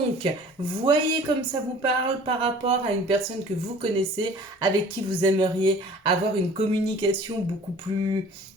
voyez comme ça vous parle par rapport à une personne que vous connaissez, avec qui vous aimeriez avoir une communication beaucoup plus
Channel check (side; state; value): both; normal; correlation 0.48